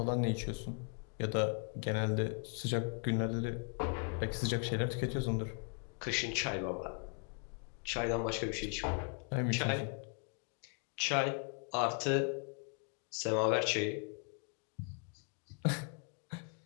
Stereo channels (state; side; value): quieter; right; 39.7 dB